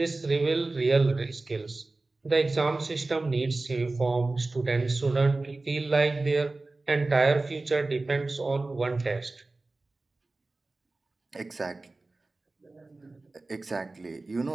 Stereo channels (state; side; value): quieter; left; 3.2 dB